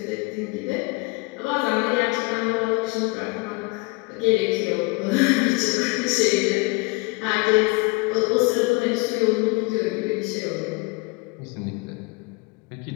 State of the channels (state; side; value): quieter; right; 27.3 dB